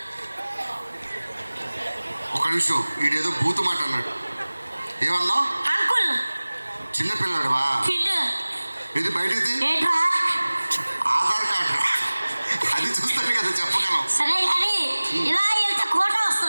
ఒక నిమిషం, వీడేదో బూతు మాట అన్నాడు. ఏమన్నావు? అంకుల్. చిన్నపిల్లాడువా? ఇది బయటిది ఆధార్ కార్డు, అది చూస్తే కదా చెప్పగలం. సరే కానీ ఇలా వెళ్తే కోట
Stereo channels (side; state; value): both; inverted; correlation -1.00